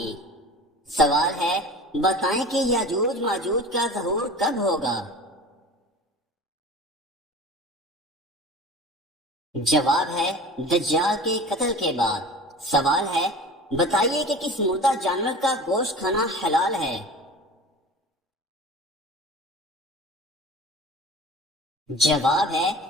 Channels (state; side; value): normal; both; correlation 0.38